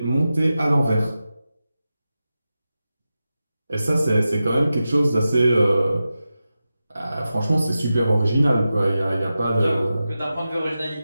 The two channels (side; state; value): both; inverted; correlation -0.92